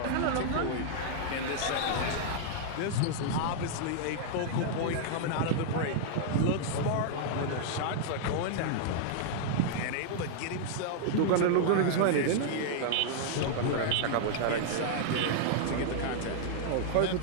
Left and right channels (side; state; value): both; different; correlation -0.01